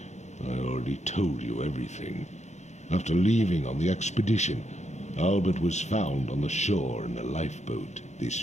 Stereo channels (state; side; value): late; right; 0.33 ms